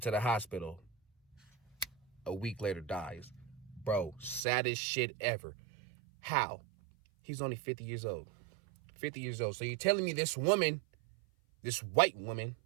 to the hospital. A week later dies. Bro, saddest shit ever. How? He's only 50 years old. 50 years old. So you're telling me this woman, this white woman,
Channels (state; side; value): drops out; left; at 4.4 s